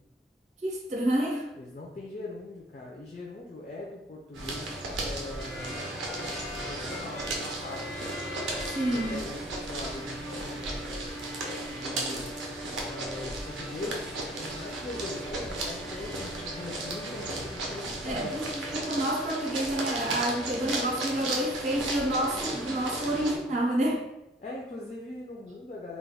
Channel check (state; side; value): normal; both; correlation 0.51